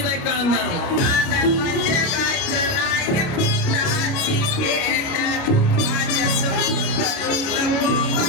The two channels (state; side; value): late; right; 29 ms